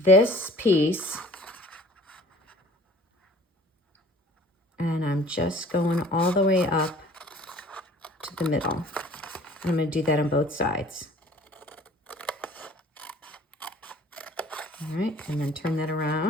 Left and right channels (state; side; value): normal; both; correlation 0.50